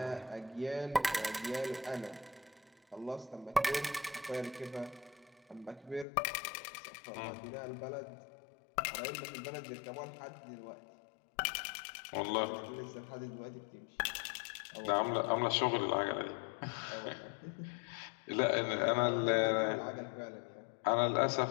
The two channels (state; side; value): drops out; right; at 6.1 s